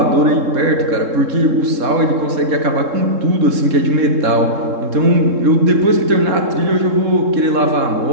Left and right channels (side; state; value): left; late; 3.7 ms